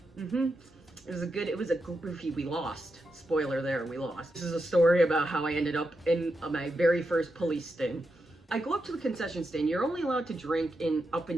It was a goofy, we lost. Spoiler there, we lost. This is a story about how I ended up in my very first police sting. I go up to the concession stand. You're only allowed to drink in up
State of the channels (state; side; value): normal; both; correlation 0.86